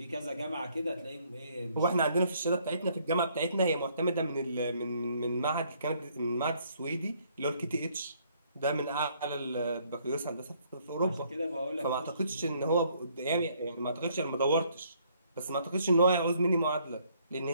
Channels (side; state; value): both; inverted; correlation -0.66